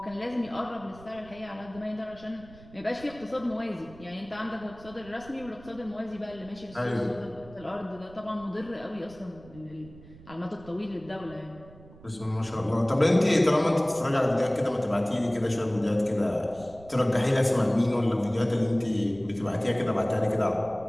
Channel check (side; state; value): right; noise; rumble, 21 dB below the sound